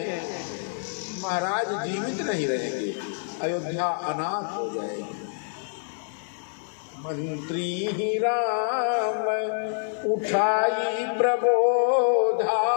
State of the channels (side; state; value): right; silent; 57 dB below the other